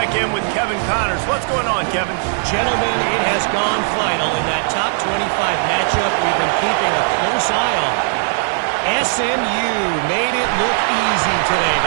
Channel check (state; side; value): silent; left; digital silence